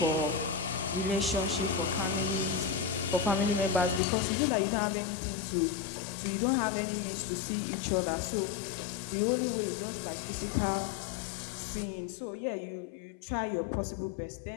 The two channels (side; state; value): right; drops out; at 4.0 s